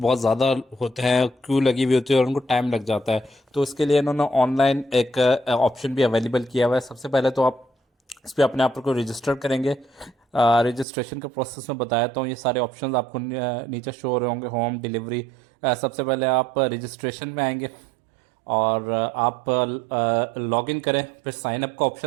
ज़्यादा होते हैं, क्यू लगी हुई होती है और उनको टाइम लग जाता है। तो इसके लिए इन्होंने ऑनलाइन एक ऑप्शन भी अवेलेबल किया हुआ है। सबसे पहले तो आप इस पर अपने आप को रजिस्टर करेंगे। रजिस्ट्रेशन का प्रोसेस मैं बताया हूँ। ये सारे ऑप्शंस आपको नीचे शो हो रहे होंगे। होम डिलीवरी, सबसे पहले आप रजिस्ट्रेशन में आएंगे और आप लॉग इन करें, फिर साइन अप का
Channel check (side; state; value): left; drops out; at 10.9 s